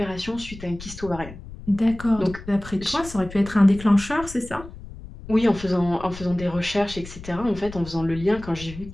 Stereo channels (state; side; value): noise; left; rumble, 14 dB below the sound